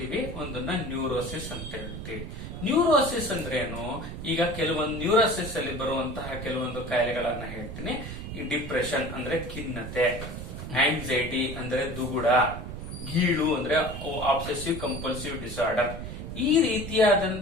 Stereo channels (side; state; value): right; noise; rumble, 8 dB below the sound